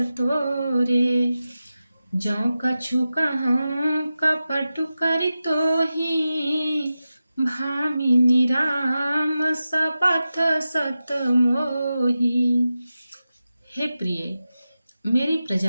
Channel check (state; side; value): inverted; both; correlation -0.93